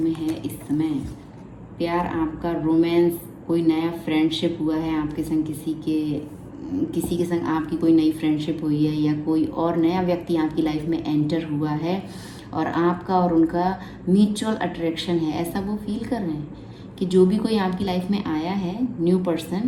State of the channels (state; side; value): identical; both; correlation 1.00